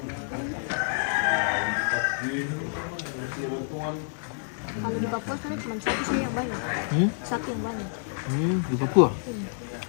Kalau di Papua kan cuma satu sih yang banyak. Satu yang banyak. Di Papua.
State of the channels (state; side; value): silent; right; digital silence